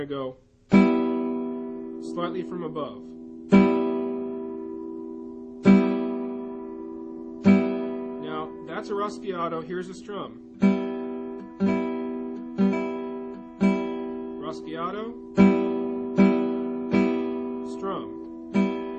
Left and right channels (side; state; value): both; identical; correlation 1.00